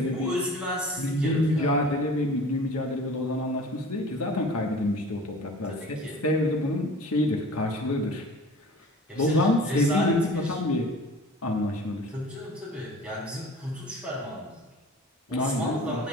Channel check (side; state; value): both; normal; correlation 0.43